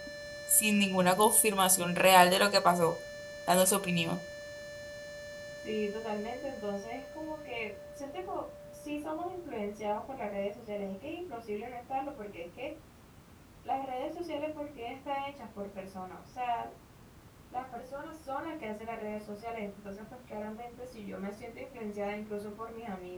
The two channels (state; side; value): identical; both; correlation 1.00